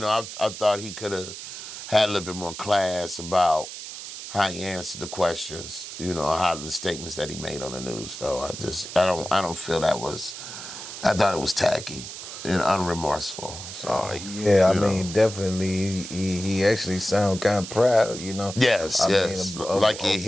I thought he could have had a little bit more class about how he answered the questions, you know, how the statements that he made on the news, though. I don't feel that was, I thought it was tacky and unremorseful. So, Yeah, I mean, definitely, he actually sound kind of proud, you know. Yes, I yes, mean, like a what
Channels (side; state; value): right; noise; hiss, 10 dB below the sound